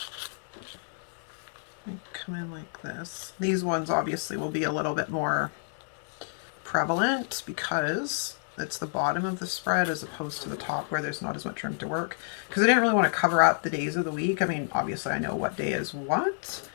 come in like this. These ones obviously will be a little bit more prevalent because it's the bottom of the spread as opposed to the top where there's not as much room to work. Because I didn't really want to cover up the days of the week. I mean, obviously I know what day is what,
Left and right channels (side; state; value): right; silent; digital silence